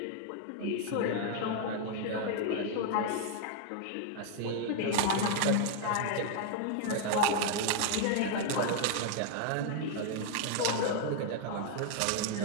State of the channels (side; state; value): both; different; correlation 0.00